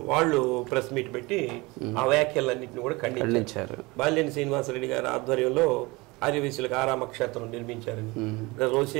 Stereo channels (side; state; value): left; quieter; 23.8 dB